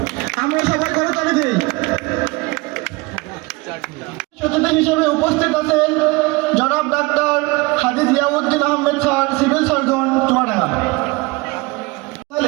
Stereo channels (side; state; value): left; quieter; 24.3 dB